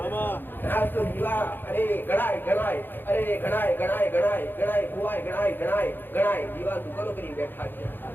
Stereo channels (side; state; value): right; late; 0.095 ms